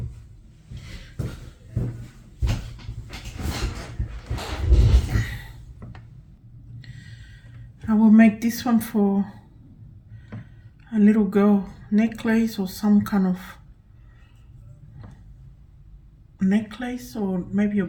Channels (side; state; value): both; identical; correlation 1.00